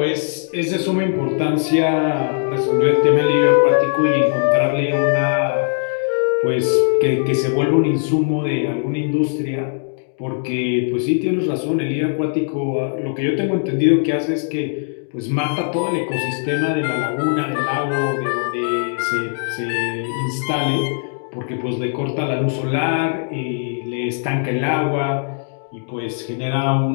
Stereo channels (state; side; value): silent; right; 59 dB below the other